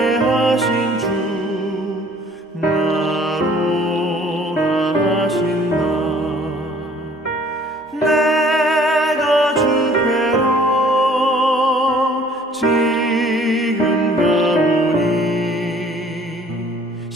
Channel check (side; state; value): both; normal; correlation 0.55